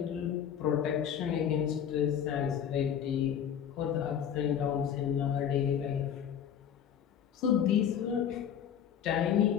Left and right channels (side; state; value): right; quieter; 8.9 dB